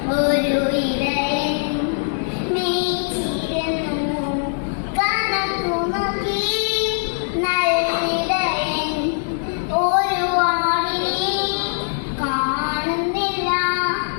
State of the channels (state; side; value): silent; right; digital silence